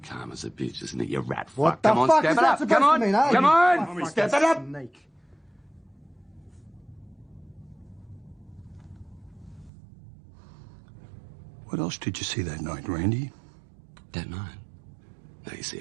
Calm as a bitch, isn't it, you rat fuck? What the Come on, fuck step is it that up. supposed Come on, to mean, eh? come on, step it up. Snake. What else did you see that night, Randy? That night? No, you see,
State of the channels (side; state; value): left; drops out; at 9.7 s